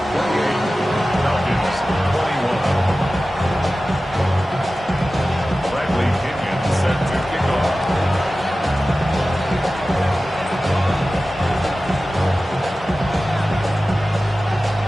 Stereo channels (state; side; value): normal; both; correlation 0.95